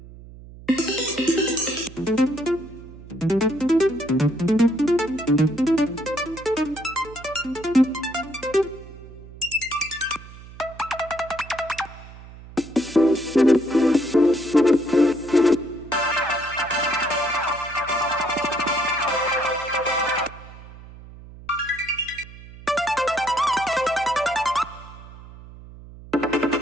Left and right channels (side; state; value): right; noise; hum, 17 dB below the sound